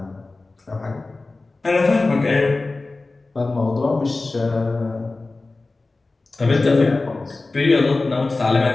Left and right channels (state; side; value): quieter; right; 3.4 dB